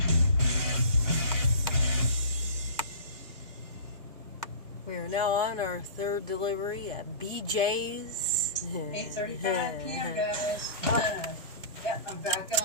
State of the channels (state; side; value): inverted; both; correlation -0.37